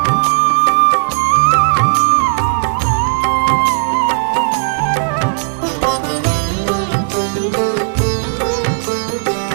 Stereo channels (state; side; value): silent; left; digital silence